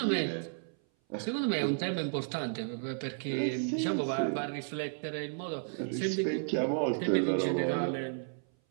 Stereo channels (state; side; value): silent; left; 56 dB below the other